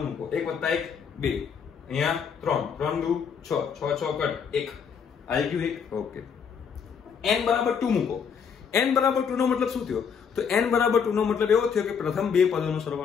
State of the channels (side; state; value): right; quieter; 6.8 dB